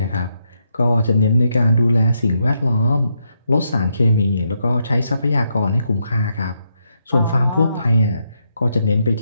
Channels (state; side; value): inverted; both; correlation -0.79